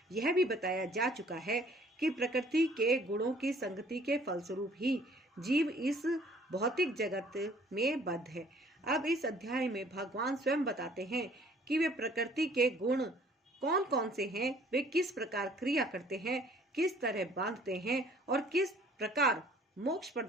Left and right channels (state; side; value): normal; both; correlation 0.56